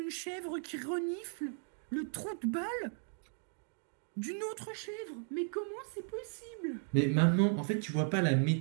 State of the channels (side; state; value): left; silent; 54 dB below the other